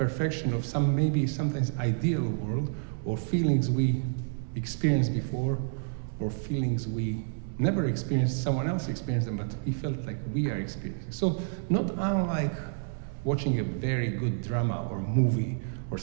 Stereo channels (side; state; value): left; silent; digital silence